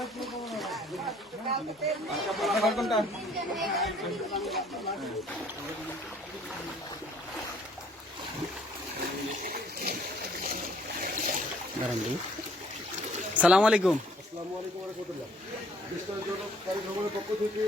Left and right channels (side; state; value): both; normal; correlation 0.60